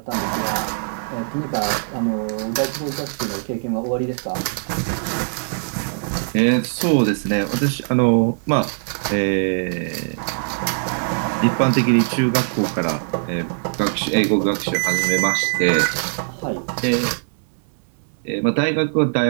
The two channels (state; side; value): silent; left; digital silence